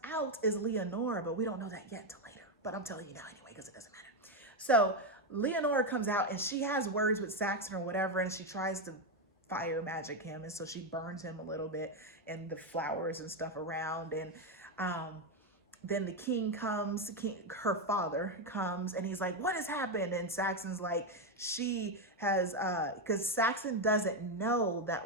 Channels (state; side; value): normal; both; correlation 0.06